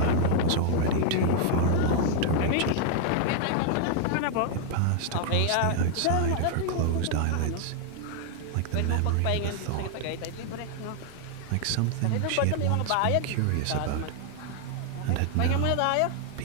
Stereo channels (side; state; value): both; different; correlation 0.00